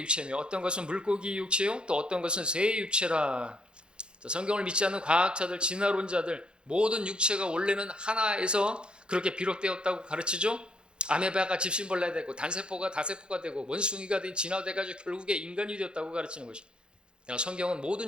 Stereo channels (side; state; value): left; late; 0.052 ms